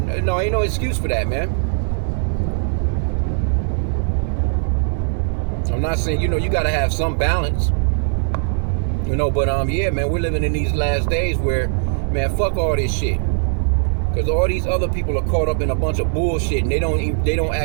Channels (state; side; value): silent; left; digital silence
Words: no excuse for that, man. I'm not saying, you gotta have some balance. But yeah, man, we're living in these last days where, man, fuck all this shit. Because all these other people are caught up in a bunch of bullshit and they don't